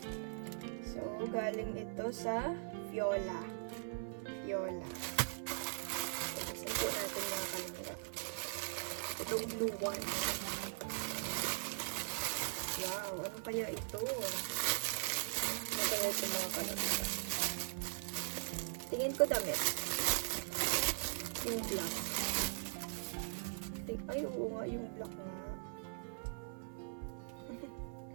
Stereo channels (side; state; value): left; silent; 51 dB below the other